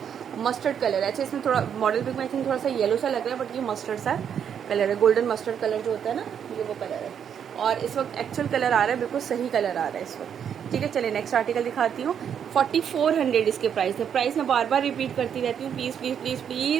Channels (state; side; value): quieter; left; 8.3 dB